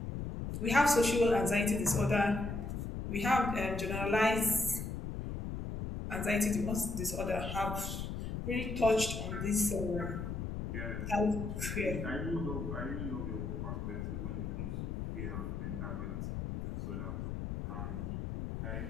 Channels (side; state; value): left; noise; rumble, 4 dB below the sound